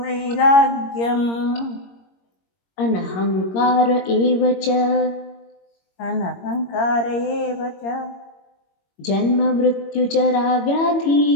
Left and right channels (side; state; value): right; late; 22 ms